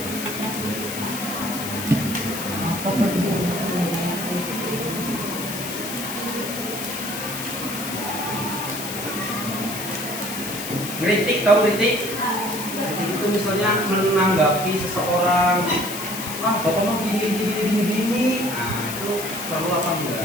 Kritik, tahu kritik? Kritik itu misalnya menanggapi seseorang, bapak mau gini. Nah, itu perlu apa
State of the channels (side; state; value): left; noise; hiss, 7 dB below the sound